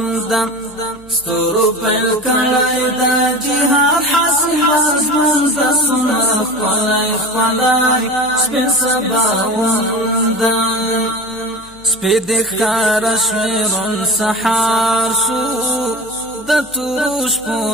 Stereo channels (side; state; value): left; noise; hum, 25 dB below the sound